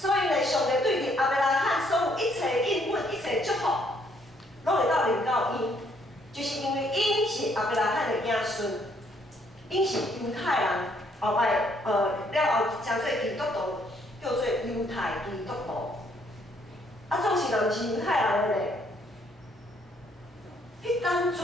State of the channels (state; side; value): normal; both; correlation 0.68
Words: 以呢，上帝对亚伯拉罕所有一切应允、一切祝福。拢会到临到因，就是因为因是亚伯拉罕的子孙，因是犹太人，后摆了后成做基督徒，叫做犹太基督徒。总是人是犹太人的咧，迄当